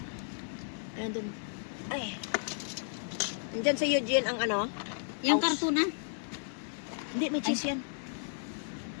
Nandun. Ay. Nandyan sa Eugene ang ano? Yung House. karton na. Hindi, may cheese yan.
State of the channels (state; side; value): silent; right; digital silence